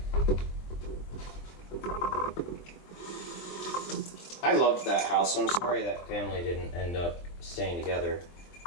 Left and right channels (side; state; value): right; late; 23 ms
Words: I loved that house. I'm sorry that family didn't end up staying together